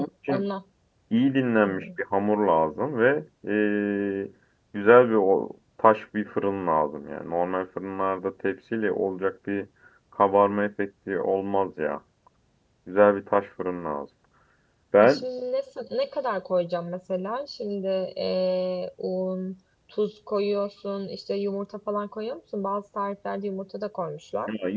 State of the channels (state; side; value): identical; both; correlation 1.00